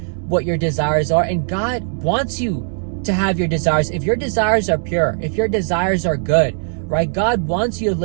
what your desires are, and God wants you to have your desires. If your desires are pure, if your desires are good, right? God wants you to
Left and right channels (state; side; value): silent; left; digital silence